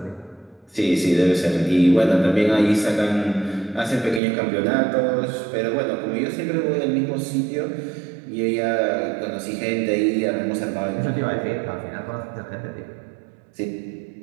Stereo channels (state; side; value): drops out; left; at 4.2 s